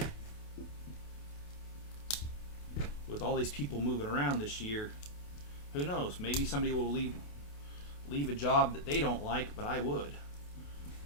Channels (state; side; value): late; right; 28 ms